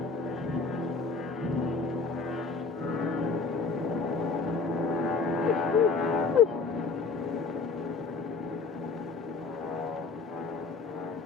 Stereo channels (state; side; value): quieter; right; 4.5 dB